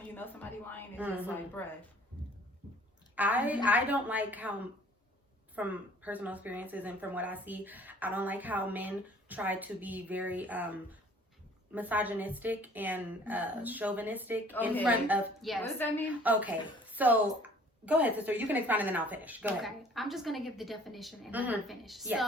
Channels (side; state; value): both; normal; correlation 0.54